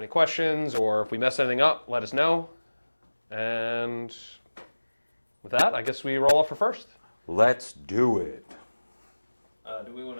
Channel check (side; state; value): both; inverted; correlation -1.00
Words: questions or if we mess anything up, let us know. And with that, I guess we roll off for first. Let's do it. Do we want